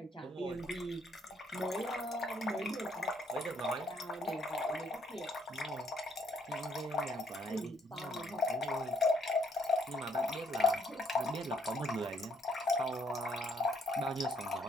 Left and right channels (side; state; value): both; normal; correlation 0.68